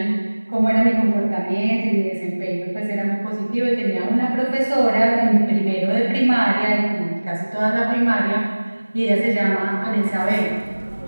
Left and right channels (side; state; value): both; inverted; correlation -1.00